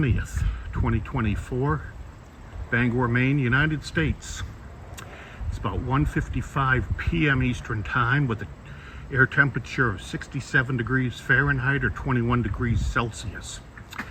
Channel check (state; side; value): identical; both; correlation 1.00